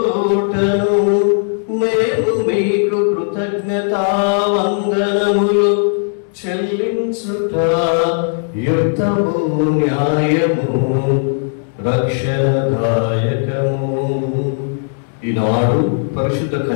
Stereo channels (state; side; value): silent; right; digital silence